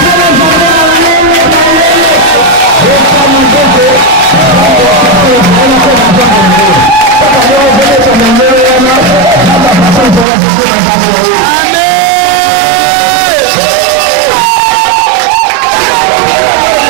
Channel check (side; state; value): left; drops out; at 10.2 s